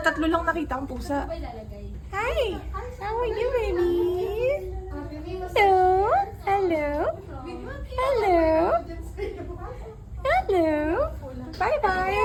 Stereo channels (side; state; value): both; identical; correlation 1.00